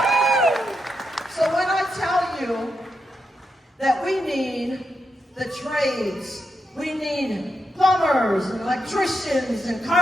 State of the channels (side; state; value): both; normal; correlation 0.84